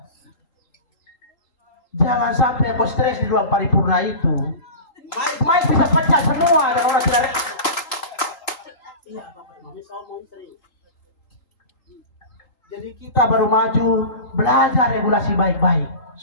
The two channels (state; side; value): late; right; 3.8 ms